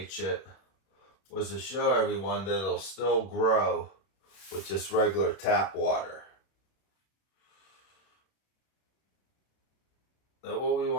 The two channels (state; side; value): late; right; 31 ms